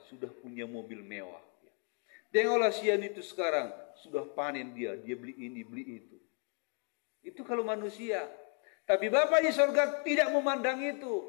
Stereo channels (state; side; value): quieter; right; 37.1 dB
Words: punya mobil mewah. Tengoklah Sian itu sekarang sudah panen dia beli ini, beli itu. Itu kalau manusia. Tapi Bapa di surga tidak memandang